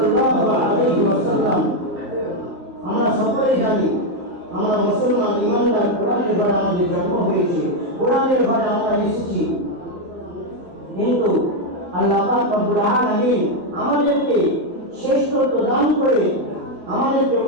আলাইহি ওয়াসাল্লাম। আমরা সকলেই জানি আমরা মুসলমান ইমানদার, কোরআনের দ্বারা আমাদের জন্ম হয়েছে, কোরআনের দ্বারা আমরা এসেছি, কিন্তু আল্লাহ পাক রব্বুল আলামিন আমাদেরকে শ্রেষ্ঠত্ব দান করে আমাদেরকে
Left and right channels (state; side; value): late; left; 11 ms